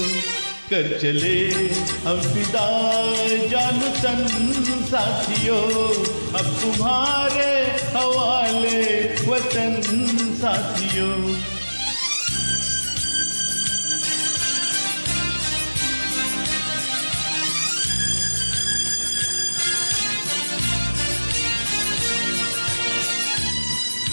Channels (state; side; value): inverted; both; correlation -1.00